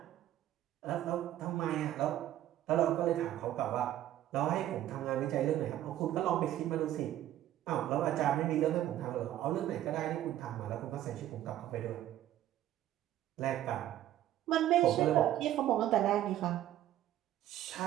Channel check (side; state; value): left; quieter; 12.8 dB